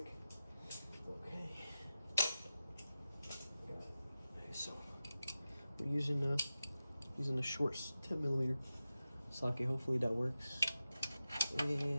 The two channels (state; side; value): inverted; both; correlation -0.92